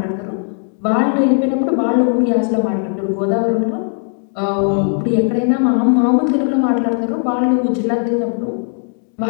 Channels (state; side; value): silent; right; 55 dB below the other